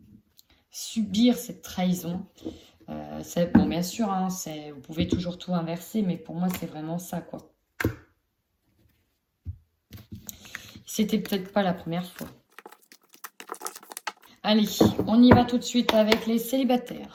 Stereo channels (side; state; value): both; identical; correlation 1.00